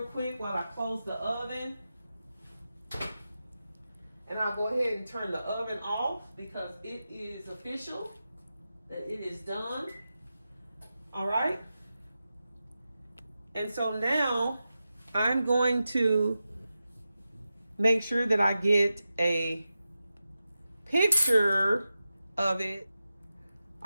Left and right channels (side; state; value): both; inverted; correlation -0.92